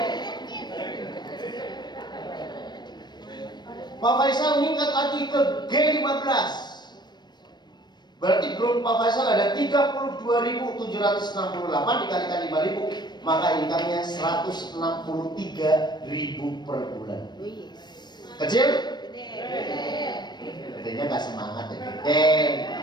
Pak Faisal meningkat lagi ke G15, berarti grup Pak Faisal ada 32.768 dikalikan 5.000, maka income-nya 163.000 per bulan. Kecil? Gedenya gak semangat ya.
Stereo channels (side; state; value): right; late; 0.21 ms